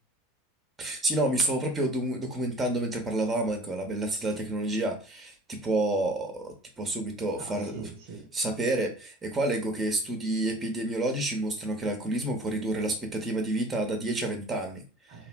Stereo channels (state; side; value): normal; both; correlation 0.48